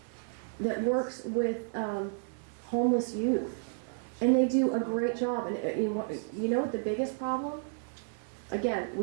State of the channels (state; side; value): silent; left; 57 dB below the other